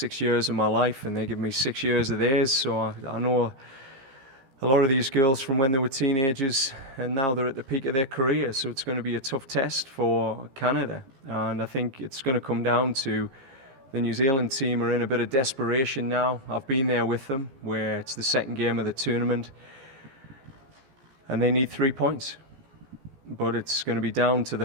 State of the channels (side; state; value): left; late; 15 ms